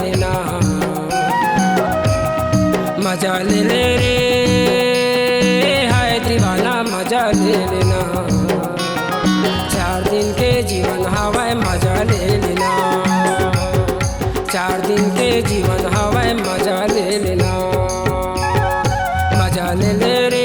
मजा ले ले रे, हाय दीवाना मजा ले लेना। 4 दिन के जीवन हवाए मजा ले लेना, 4 दिन के जीवन हवाए मजा ले लेना, मजा ले ले रे,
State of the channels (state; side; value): identical; both; correlation 1.00